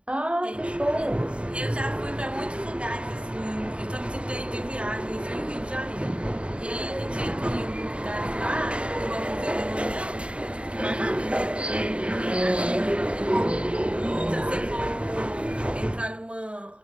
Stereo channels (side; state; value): left; late; 0.058 ms